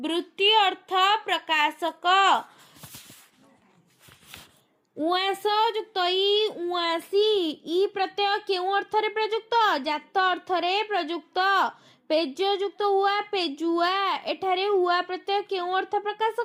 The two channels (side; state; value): both; identical; correlation 1.00